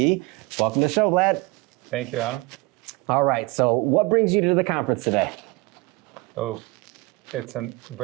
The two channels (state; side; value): quieter; left; 24.9 dB